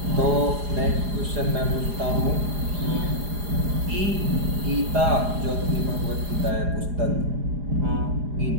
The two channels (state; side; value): late; left; 4.9 ms